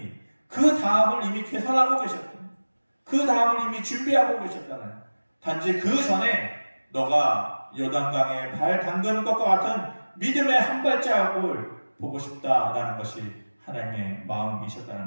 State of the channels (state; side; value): inverted; both; correlation -1.00